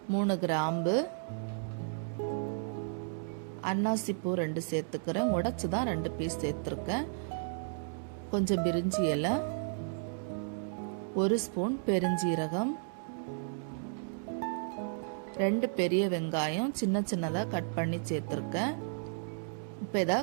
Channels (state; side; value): silent; left; digital silence